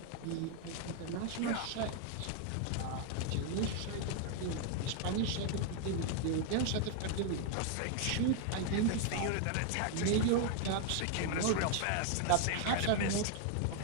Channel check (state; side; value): different; both; correlation 0.00